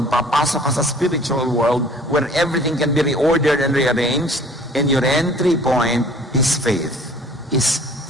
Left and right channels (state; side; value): normal; both; correlation 0.51